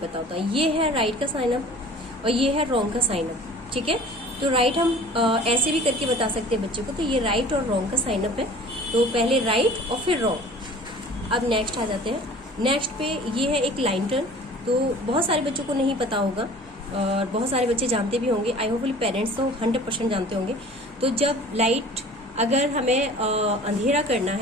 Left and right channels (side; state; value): both; normal; correlation 0.45